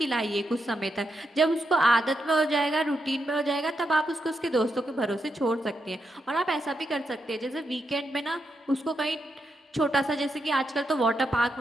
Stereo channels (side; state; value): both; normal; correlation 0.83